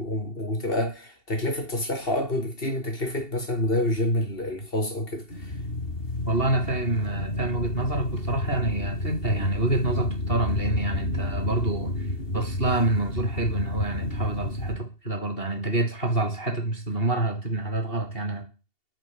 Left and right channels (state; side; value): late; right; 2.7 ms